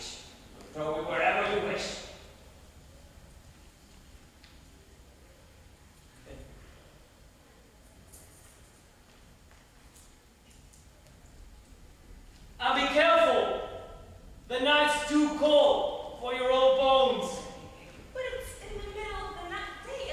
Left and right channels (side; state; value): both; identical; correlation 1.00